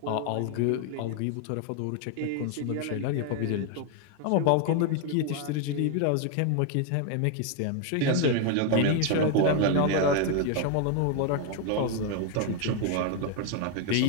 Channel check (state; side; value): different; both; correlation 0.01